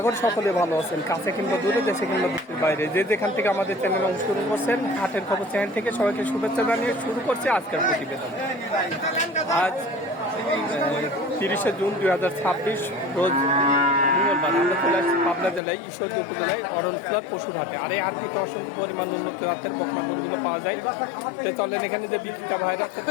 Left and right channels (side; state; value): right; drops out; at 15.6 s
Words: করি সকলে ভালো আছেন, কাছে কিংবা দূরে, দেশে কিংবা দেশের বাইরে, যে যেখান থেকে আমাদের চ্যানেলে অংশগ্রহণ করছেন। হাটের খবর চ্যানেল থেকে সবাইকে শুভেচ্ছা জানিয়ে শুরু করছে আজকের প্রতিবেদন। আজ 30শে জুন 2026 রোজ মঙ্গলবার। আমরা চলে আসছি পাবনা জেলায় ঈশ্বরদী উপজেলায় অরণখোলার পশুর হাটে। আর এই হাটটিতে অসংখ্য পরিমাণ উন্নত জাতের বকনা গরুগুলো পাওয়া যায়। তো চলেন এখানে যে বিক্রেতা ভাইরা আছে